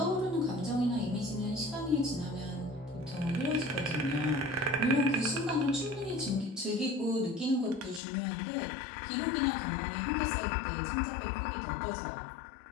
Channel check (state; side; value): drops out; right; at 8.0 s